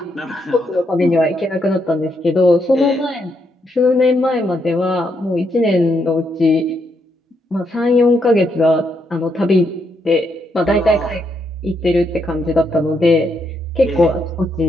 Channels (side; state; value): both; normal; correlation 0.78